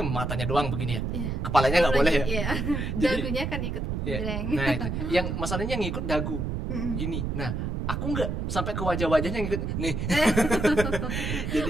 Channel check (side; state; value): right; noise; rumble, 2 dB below the sound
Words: matanya doang begini ya. Iya. Kepalanya nggak boleh ya. Iya. Jadi- Dagunya kan ikut Iya. geleng. Nah itu, yang masalahnya yang ngikut dagu, gini. Nah, aku nggak sampai ke wajah-wajahnya ngikut. Nih.